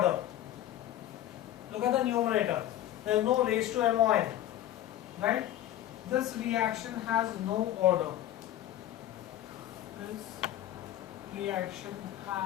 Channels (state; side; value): quieter; right; 12.8 dB